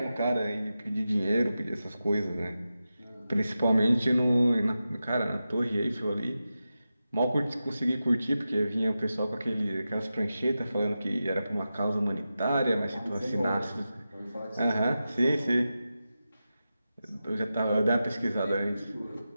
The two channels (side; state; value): both; inverted; correlation -0.92